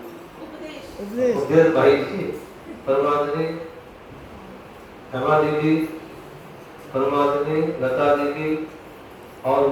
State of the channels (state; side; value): identical; both; correlation 1.00